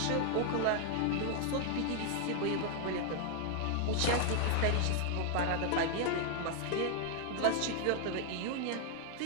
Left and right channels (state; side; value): different; both; correlation 0.00